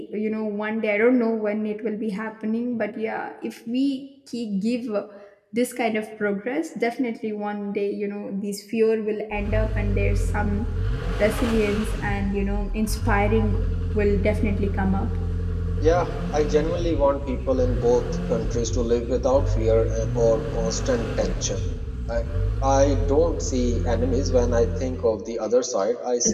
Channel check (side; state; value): both; identical; correlation 1.00